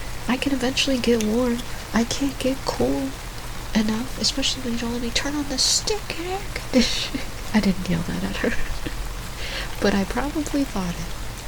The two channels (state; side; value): identical; both; correlation 1.00